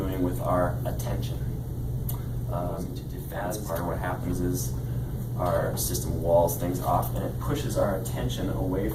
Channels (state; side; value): identical; both; correlation 1.00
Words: with our attention. That's part of what happens is our system walls things off and it pushes our attention away